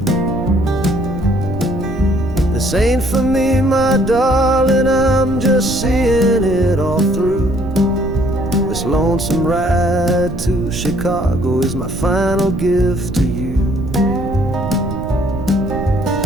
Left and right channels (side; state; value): right; noise; rumble, 8 dB below the sound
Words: This ain't for me, my darling, I'm just seeing it all through. This lonesome ride to Chicago is my final gift to you.